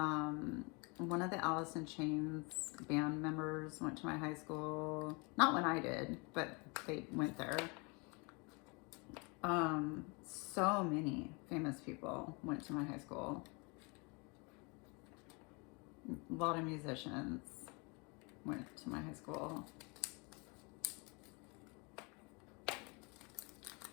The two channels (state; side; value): quieter; right; 30.6 dB